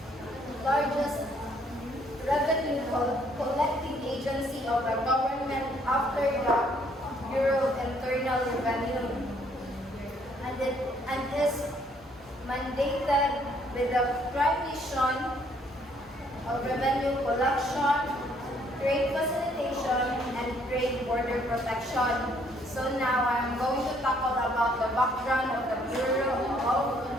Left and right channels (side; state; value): both; normal; correlation 0.65